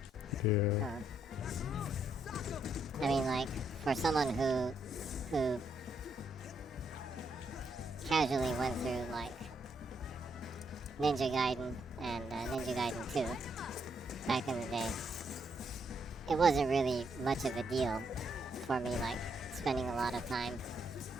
Yeah. I mean, like, for someone who casually went through, like, Ninja Gaiden and Ninja Gaiden 2 back in the day, it wasn't really much of a deal for me, like, spending a lot of time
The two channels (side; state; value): both; normal; correlation 0.76